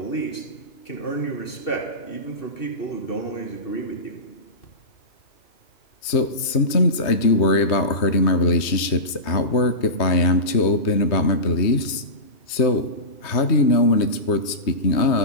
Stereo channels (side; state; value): right; late; 3.2 ms